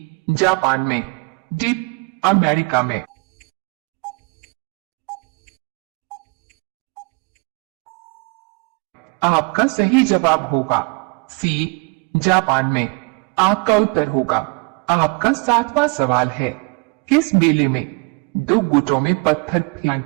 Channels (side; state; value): left; quieter; 31.2 dB